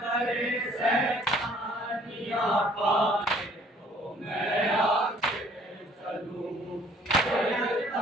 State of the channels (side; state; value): both; normal; correlation 0.59